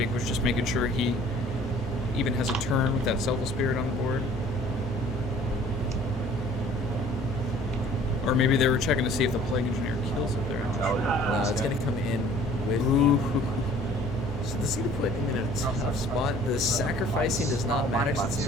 was just making sure he even has a turn with that Selfless Spirit on the board. Or maybe they were checking to see if the Plague Engineer kills it there. I'm not sure. No, it's going to come in with... Ooh. So this is going to put him in a tough spot. The sacrificing does not matter because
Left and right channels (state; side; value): normal; both; correlation 0.52